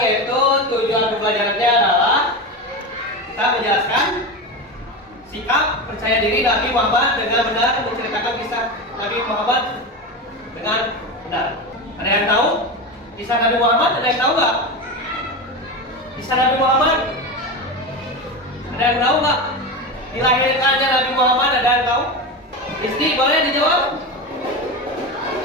yaitu tujuan pembelajarannya adalah kita menjelaskan sikap percaya diri Nabi Muhammad dengan benar, menceritakan kisah Nabi Muhammad dengan benar. Ada yang tahu kisah Nabi Muhammad? Ada yang tahu nggak? Kisah Nabi Muhammad? Ada yang tahu nggak? Dilahirkannya Nabi Muhammad, ada yang tahu? Isti, boleh dijawab?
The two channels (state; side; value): normal; both; correlation 0.21